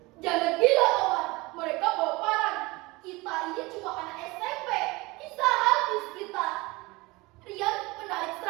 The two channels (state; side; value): quieter; left; 22.9 dB